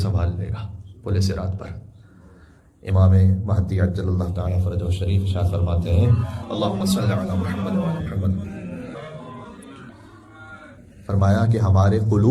لے گا پل صراط پر۔ امام مہدی عجل اللہ تعالیٰ فرجہ شریف ارشاد فرماتے ہیں اللہم صلی علی محمد وعلی محمد، فرمایا کہ ہمارے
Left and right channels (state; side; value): identical; both; correlation 1.00